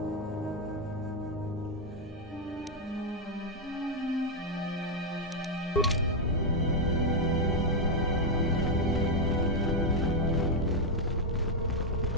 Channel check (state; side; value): normal; both; correlation 0.01